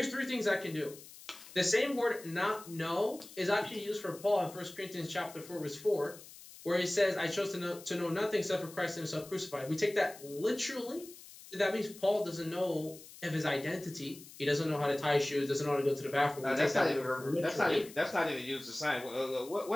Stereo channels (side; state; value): left; noise; hiss, 18 dB below the sound